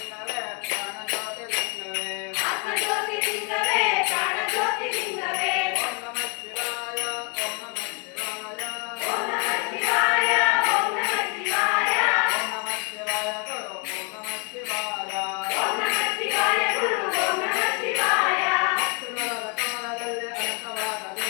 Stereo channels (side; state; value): right; quieter; 34.9 dB